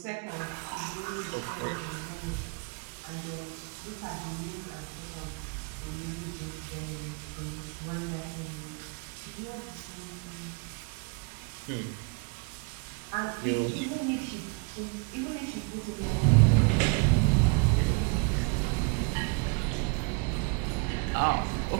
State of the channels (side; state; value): left; quieter; 33.7 dB